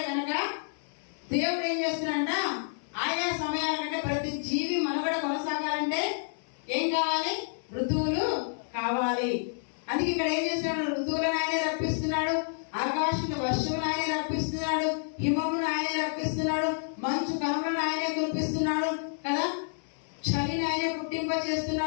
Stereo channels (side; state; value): right; silent; 57 dB below the other